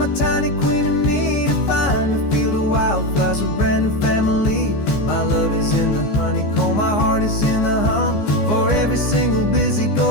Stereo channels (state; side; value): late; right; 14 ms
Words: tiny queen and me, to find a field of wildflowers with brand new family. My love is in the honeycomb, my heart is in the hum, for every single busy